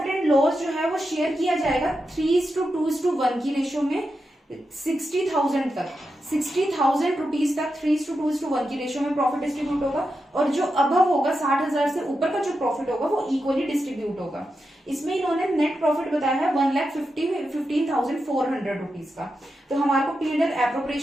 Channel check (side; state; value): both; normal; correlation 0.88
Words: एंड लॉस जो है वो शेयर किया जाएगा 3:2:1 की रेशियो में 60,000 तक, 60,000 रुपीज तक 3:2:1 की रेशियो में प्रॉफिट डिस्ट्रीब्यूट होगा, और जो अबव होगा 60,000 से ऊपर का जो प्रॉफिट होगा वो इक्वली डिस्ट्रीब्यूट होगा। इसमें इन्होंने नेट प्रॉफिट बताया है 1,15,400 रुपीज का। तो हमारे को P&L